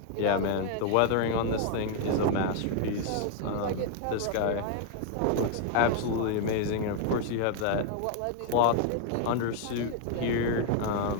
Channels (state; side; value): different; both; correlation 0.00